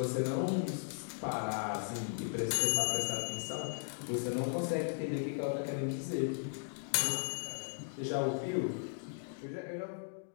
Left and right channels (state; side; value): silent; right; digital silence